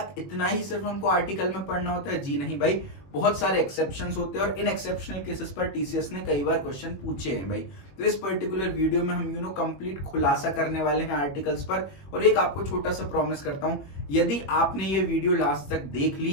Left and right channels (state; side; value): late; right; 21 ms